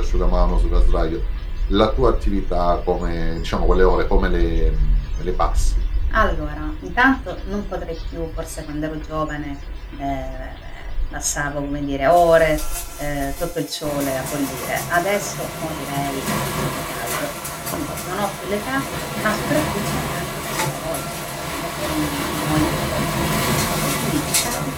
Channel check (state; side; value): identical; both; correlation 1.00